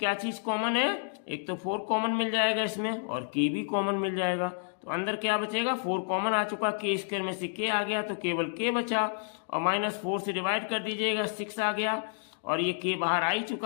चीज कॉमन है, एक तो 4 कॉमन मिल जाएगा इसमें और k भी कॉमन मिल जाएगा, तो अंदर क्या बचेगा, 4 कॉमन आ चुका, k स्क्वायर में से k आ गया तो केवल k बचा, और माइनस 4 से डिवाइड कर दीजिएगा 6 आ गया, और ये k बाहर आ ही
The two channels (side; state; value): right; silent; digital silence